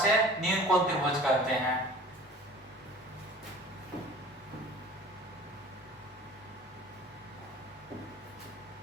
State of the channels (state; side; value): normal; both; correlation 0.44